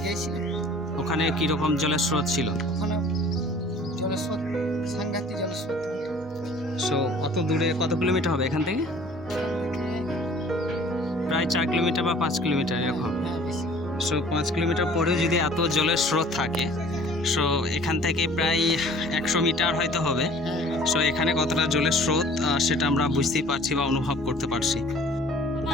গিয়েছিল। ওখানে কীরকম জলের স্রোত ছিল? ওখানে জলের স্রোত, সাংঘাতিক জলের স্রোত। সো অত দূরে, কত কিলোমিটার হবে এখান থেকে? প্রায় 4 কিলোমিটার বা 5 কিলোমিটার এরকম। হ্যাঁ বেশি। সো 5 কিলোমিটার পরেও যদি এত জলের স্রোত থাকে, সো এখান থেকে প্রায় 100 মিটার হয়তো হবে। সো এখানে কতটা জলের স্রোত সেটা আমরা বুঝতেই পারছি বা অনুভব করতে পারছি।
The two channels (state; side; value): normal; both; correlation 0.50